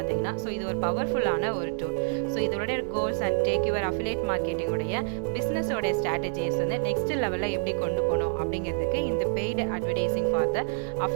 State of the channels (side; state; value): left; silent; 60 dB below the other